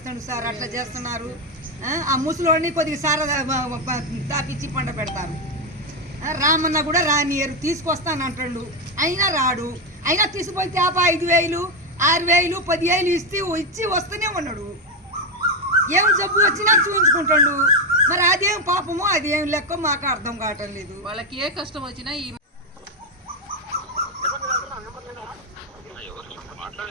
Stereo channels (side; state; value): both; normal; correlation 0.07